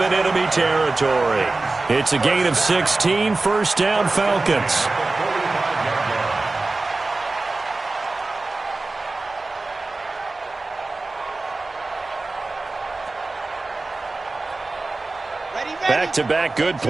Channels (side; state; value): left; quieter; 3.4 dB